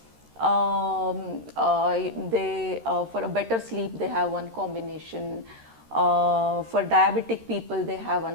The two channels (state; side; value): late; left; 13 ms